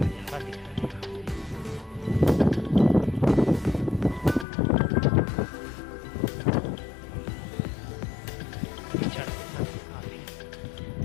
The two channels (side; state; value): right; drops out; at 4.5 s